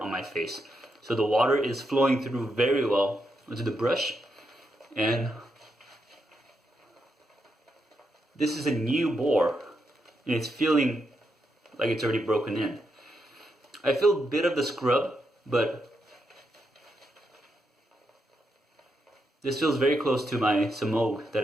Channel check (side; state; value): both; normal; correlation 0.82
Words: my face. So the water is flowing through very well onto the brush. And this is a new Boar, and it's feeling like it's already broken in. I feel a bit of the scrub, but this feels very close to my Samog